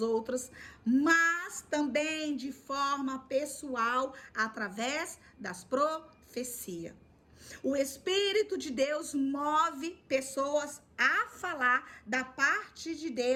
outras, mas também de forma pessoal, através das profecias. O Espírito de Deus move pessoas a falar da parte de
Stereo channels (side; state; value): both; identical; correlation 1.00